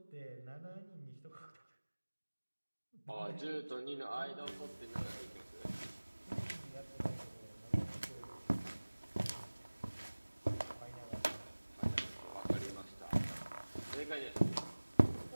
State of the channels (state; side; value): inverted; both; correlation -1.00